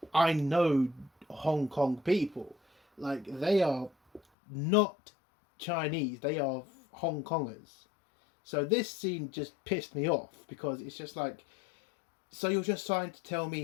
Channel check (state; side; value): drops out; right; at 4.2 s